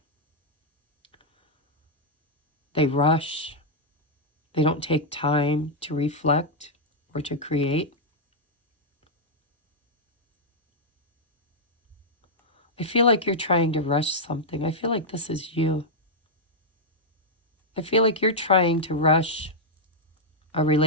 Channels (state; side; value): normal; both; correlation -0.05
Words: They rush. They don't take time to reflect or to create. I feel like you're trying to rush something. I feel like this is you. I feel like you're trying to rush a